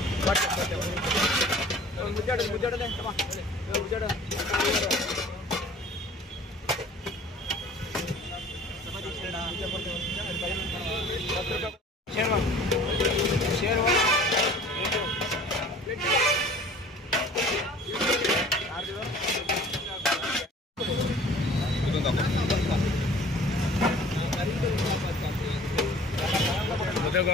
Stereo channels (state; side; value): normal; both; correlation 0.48